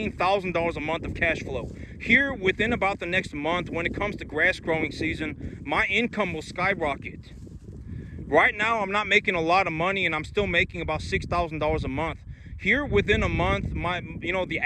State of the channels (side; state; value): both; identical; correlation 1.00